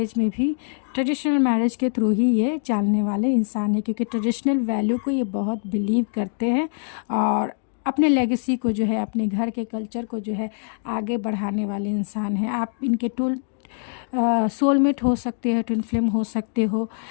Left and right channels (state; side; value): silent; right; digital silence